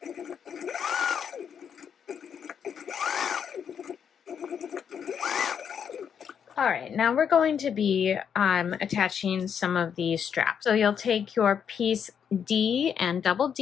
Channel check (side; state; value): right; quieter; 7.7 dB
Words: All right, now we're going to be attaching some of these straps. So you'll take your piece D and double